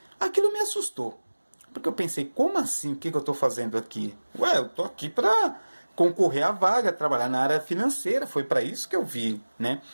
Aquilo me assustou, porque eu pensei, como assim, o que eu estou fazendo aqui? Ué, eu estou aqui para concorrer à vaga, trabalhar na área financeira, foi para isso que eu vi, né?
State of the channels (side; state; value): both; inverted; correlation -1.00